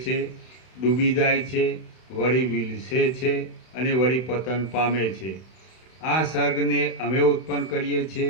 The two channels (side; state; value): right; late; 31 ms